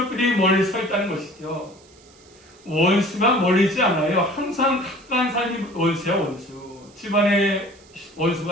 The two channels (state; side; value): noise; right; hiss, 27 dB below the sound